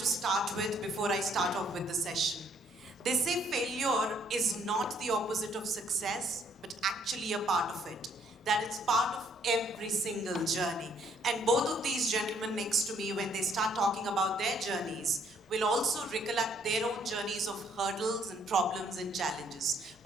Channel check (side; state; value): both; normal; correlation 0.66